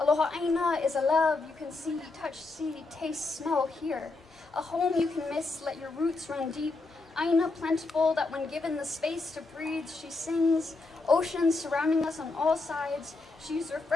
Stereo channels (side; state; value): right; quieter; 3.5 dB